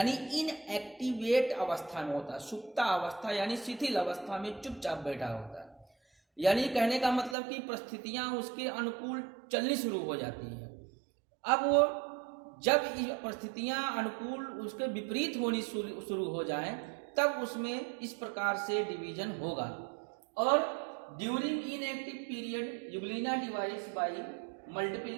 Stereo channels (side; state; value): left; drops out; at 7.4 s